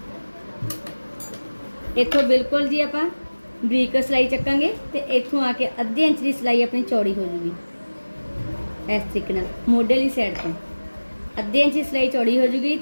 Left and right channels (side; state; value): both; inverted; correlation -1.00